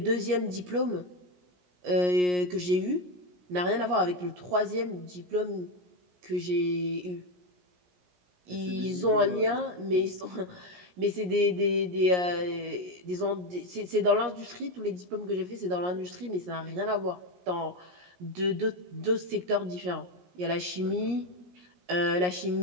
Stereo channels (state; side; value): late; left; 17 ms